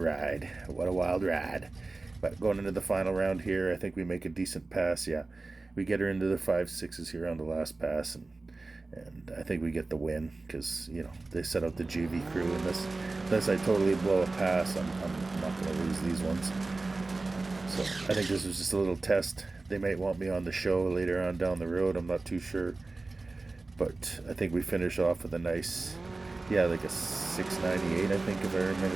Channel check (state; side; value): quieter; left; 3.4 dB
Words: What a wild ride. But going into the final round here, I think we make a decent pass. Yeah, we get her into the 5.6s here on the last pass, and I think we get the win because, you know, they set out the GV crew, and unless I totally blow a pass, I'm not going to lose these ones. So I think this was just a little test. They might want me on the show later on down the road. I'm not too sure. But I think we finish off with a nice, yeah, like a 698, I think, if I